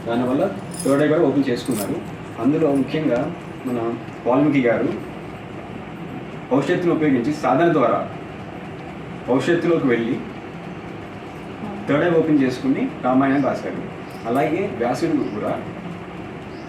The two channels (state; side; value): identical; both; correlation 1.00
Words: దానివల్ల థర్డ్ ఐ కూడా ఓపెన్ చేసుకున్నారు. అందులో ముఖ్యంగా మన వాల్మీకి గారు భవిష్యత్తును ఉపయోగించి సాధన ద్వారా భవిష్యత్తులోకి వెళ్ళి థర్డ్ ఐ ఓపెన్ చేసుకుని రామాయణం రాశారు. అలాగే వ్యాసుడు కూడా